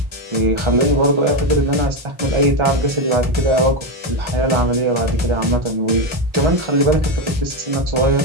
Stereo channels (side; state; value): left; late; 1.4 ms